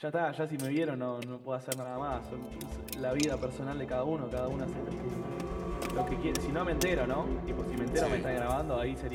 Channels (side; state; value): both; identical; correlation 1.00